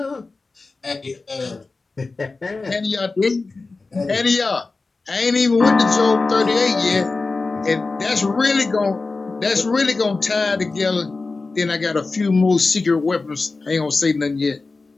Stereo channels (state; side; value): quieter; right; 3.8 dB